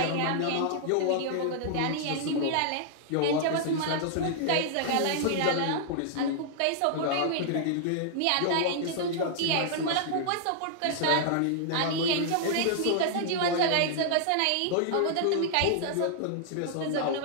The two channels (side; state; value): both; different; correlation -0.01